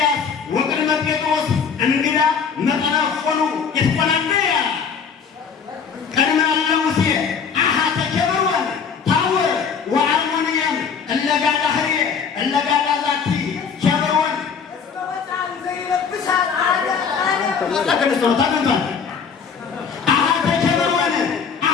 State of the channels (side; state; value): right; quieter; 6.3 dB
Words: ወቅድመ ጴጥሮስ እንግዳ መጠነፎኑ ይትቆናነያ ቅድመ እለ ሙሴ አሃተ ኬብሮን ታቦር ወአርሞንየም እለጋዳ ህርየ እለጋዳ ዛቲ ኬብሮን ታገንቷል አሃተ